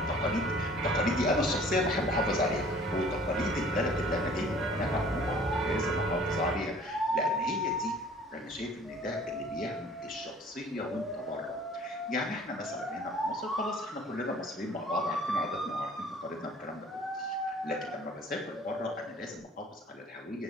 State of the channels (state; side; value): normal; both; correlation 0.52